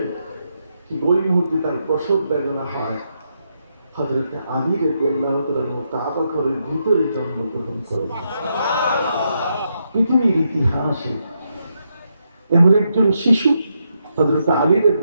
ঠিক ওই মুহূর্তে তার প্রসব বেদনা হয়। হযরত আলী রাদিয়াল্লাহু তাআলা কাবা ঘরের ভিতরে জন্মগ্রহণ করেন। পৃথিবীর ইতিহাসে এমন একজন শিশু হযরত আলী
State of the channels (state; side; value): inverted; both; correlation -0.81